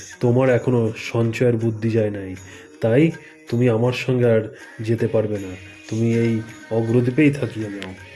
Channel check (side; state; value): both; identical; correlation 1.00